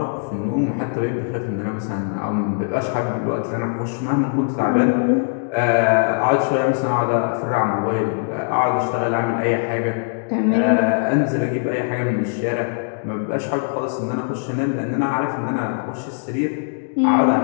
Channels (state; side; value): silent; right; digital silence